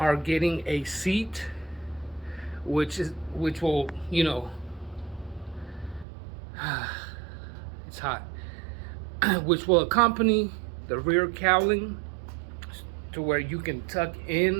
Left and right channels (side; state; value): left; drops out; at 6.1 s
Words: getting a seat, which will, it's hot, which will accompany the rear cowling to where you can tuck